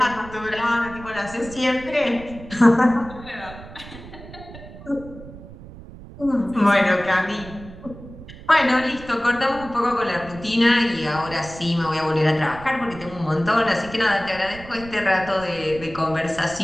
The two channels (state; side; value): noise; right; rumble, 16 dB below the sound